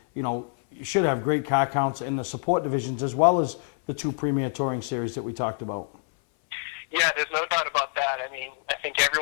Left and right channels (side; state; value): right; silent; 58 dB below the other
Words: you should have great car counts in the support divisions as well as the 2 premier touring series that we talked about. Yeah, there's no doubt about that. I mean, I think